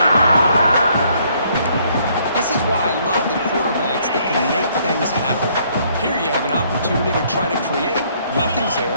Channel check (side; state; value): both; inverted; correlation -0.66